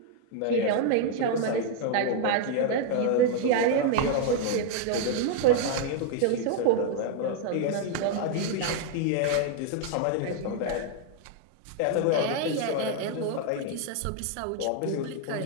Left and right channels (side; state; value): both; different; correlation 0.00